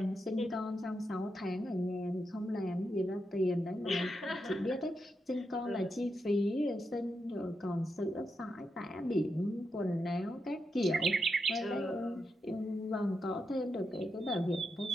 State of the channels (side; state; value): both; normal; correlation 0.85